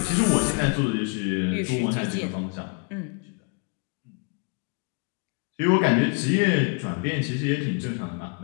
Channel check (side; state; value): right; quieter; 36.1 dB